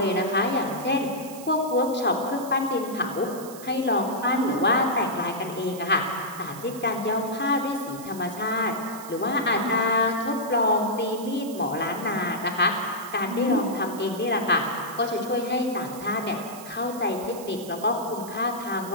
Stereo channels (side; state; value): right; noise; hiss, 15 dB below the sound